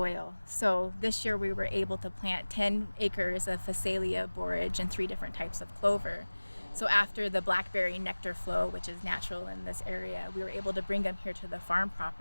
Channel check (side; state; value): both; inverted; correlation -1.00